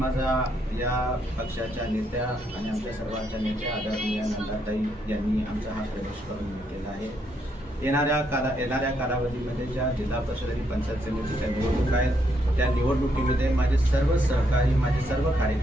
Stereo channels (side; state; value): both; normal; correlation 0.76